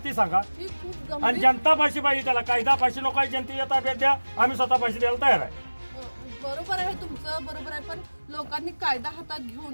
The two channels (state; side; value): inverted; both; correlation -1.00